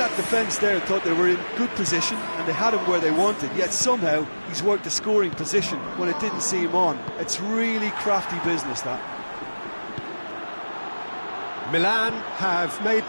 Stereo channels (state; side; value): inverted; both; correlation -1.00